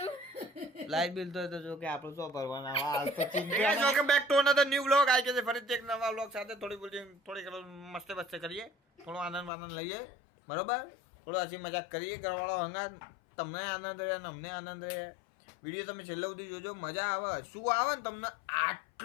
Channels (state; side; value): drops out; right; at 9.5 s